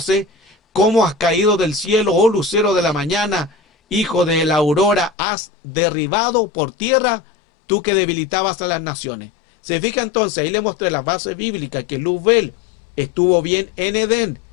cómo has caído del cielo, oh lucero de la mañana, hijo de la aurora, has derribado por tierra, tú que debilitabas a las naciones. Se fija entonces, ahí le mostré la base bíblica, que Luzbel estuvo bien en Edén,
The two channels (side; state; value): right; drops out; at 5.1 s